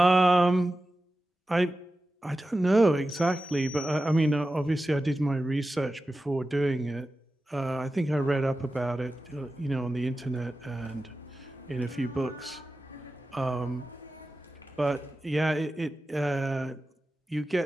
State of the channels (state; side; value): normal; both; correlation 0.93